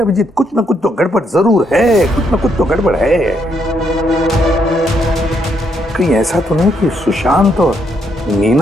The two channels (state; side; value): normal; both; correlation 0.75